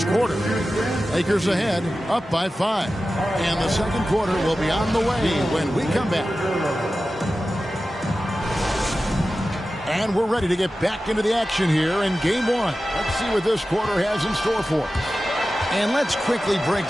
quarter. Lakers ahead, up by 5. And the second quarter will be on the way when we come back. And we're ready to get back into the action here in Game 1. Let's see what this quarter has in store for us. And let's quickly break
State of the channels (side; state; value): both; normal; correlation 0.94